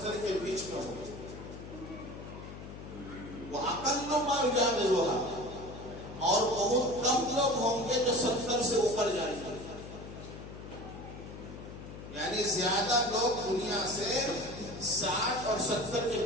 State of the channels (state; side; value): noise; left; hum, 12 dB below the sound